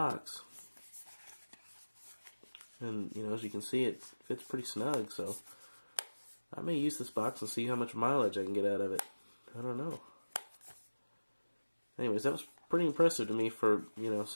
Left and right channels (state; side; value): inverted; both; correlation -1.00